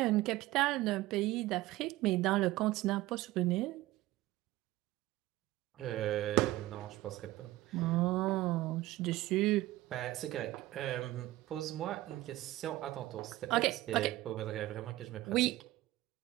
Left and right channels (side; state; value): left; quieter; 17.1 dB